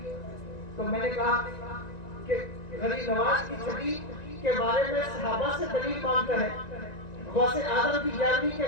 تو میں نے کہا کہ غریب نواز کی 6ٹھی کے بارے میں صحابہ سے دلیل مانگتا ہے، غوث اعظم کی 11ویں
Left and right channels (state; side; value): late; right; 1.9 ms